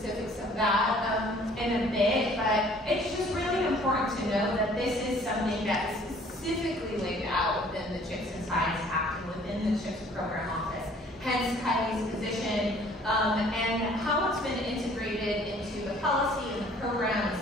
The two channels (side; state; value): both; normal; correlation 0.55